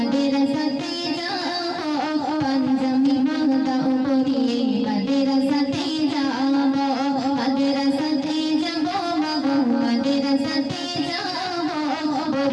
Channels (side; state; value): both; identical; correlation 1.00